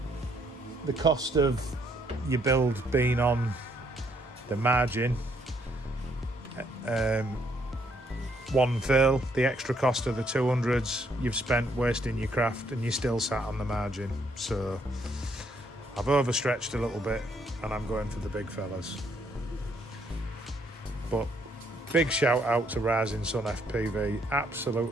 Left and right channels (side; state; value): both; normal; correlation 0.70